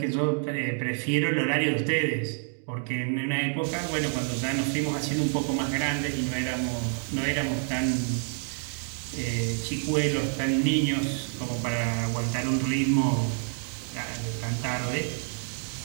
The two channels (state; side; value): silent; left; 56 dB below the other